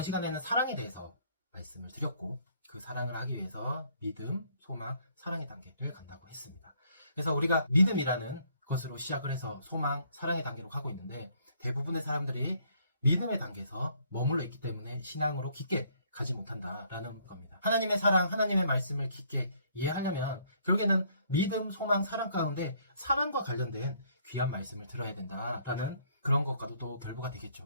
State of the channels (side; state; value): both; inverted; correlation -0.64